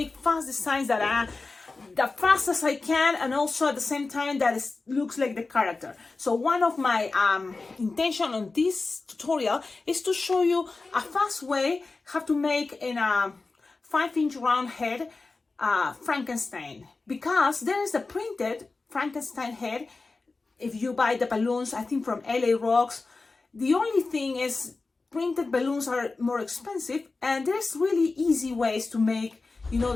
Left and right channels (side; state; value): right; quieter; 3.8 dB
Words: fast designs that are the fastest I can, and also at the same time that it looks like the character. So one of my intention on this tutorial is to show you a fast way how to make in a 5-inch round head Frankenstein, because there is a printed Frankenstein head. If you buy the balloons, I think from LA Rocks, the only thing is printed balloons are more expensive, and there's really easy ways to make, you know,